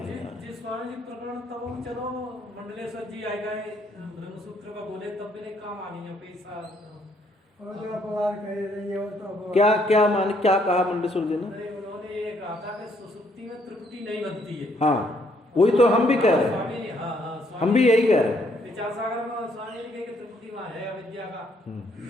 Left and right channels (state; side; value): normal; both; correlation 0.69